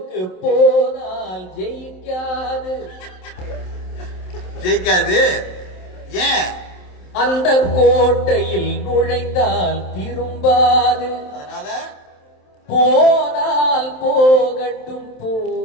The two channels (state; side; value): late; right; 27 ms